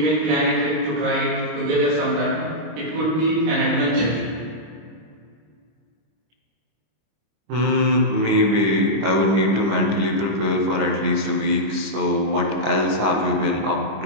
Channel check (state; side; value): late; left; 25 ms